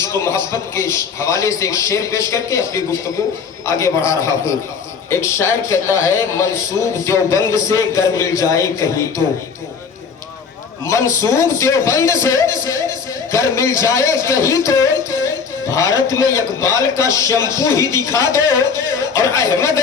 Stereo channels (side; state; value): right; quieter; 5.9 dB